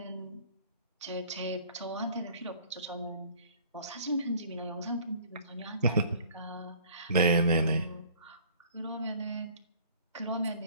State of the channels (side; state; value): both; inverted; correlation -0.53